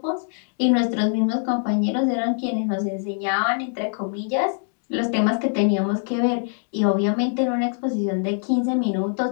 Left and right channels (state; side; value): silent; right; 63 dB below the other